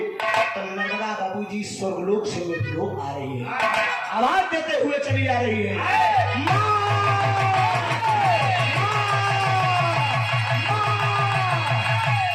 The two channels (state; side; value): identical; both; correlation 1.00